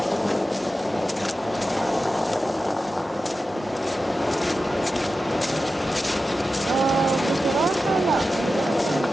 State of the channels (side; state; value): both; normal; correlation 0.93